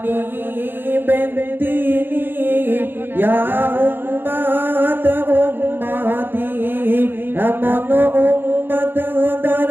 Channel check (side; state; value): left; late; 0.099 ms